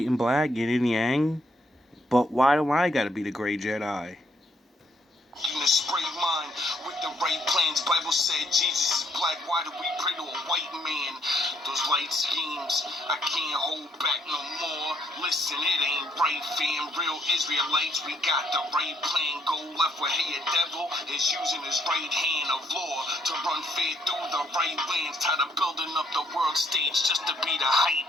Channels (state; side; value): normal; both; correlation 0.71